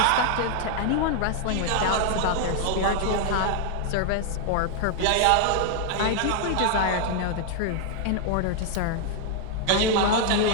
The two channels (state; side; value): different; both; correlation 0.00